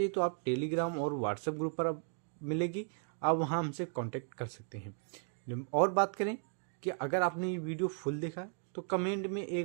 तो आप टेलीग्राम और व्हाट्सएप ग्रुप पर अब मिलेगी, आप वहाँ हमसे कांटेक्ट कर सकते हैं। और बात करें कि अगर आपने ये वीडियो फुल देखा है तो कमेंट में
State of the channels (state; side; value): silent; left; 54 dB below the other